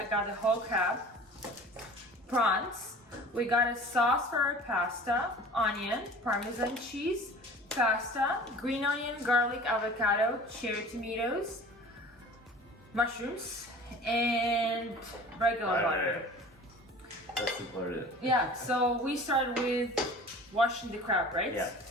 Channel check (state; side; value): normal; both; correlation 0.43